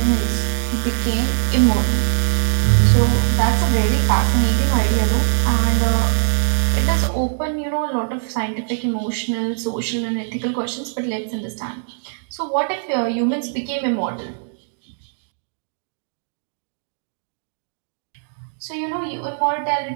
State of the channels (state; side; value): silent; left; digital silence